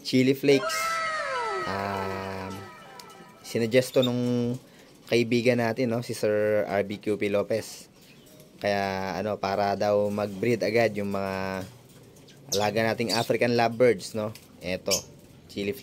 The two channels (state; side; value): identical; both; correlation 1.00